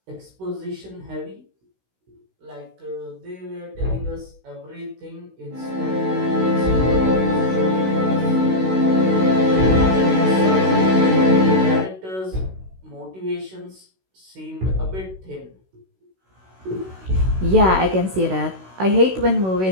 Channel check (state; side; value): late; left; 16 ms